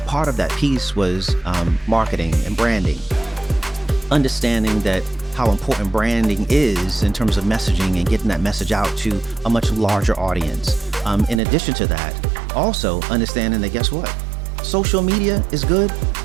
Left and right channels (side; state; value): left; drops out; at 11.4 s